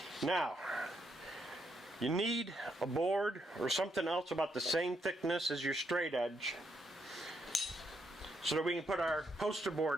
Now, you need a board or something else about the same thickness as your straight edge so that we can put our poster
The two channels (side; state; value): both; normal; correlation 0.78